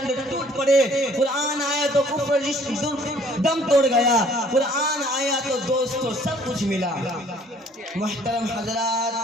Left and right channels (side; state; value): both; normal; correlation 0.57